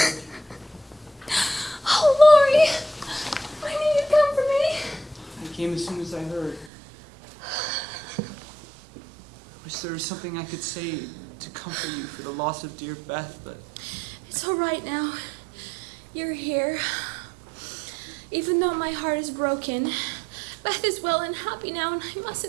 Oh, Lori. I knew you'd come for me. I came as soon as I heard. I wish there was something I could say to comfort you for the loss of dear Beth, but... It's all right now. You're here. Even though my heart is broken, Beth is well and happy now, and I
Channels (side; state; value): left; drops out; at 6.7 s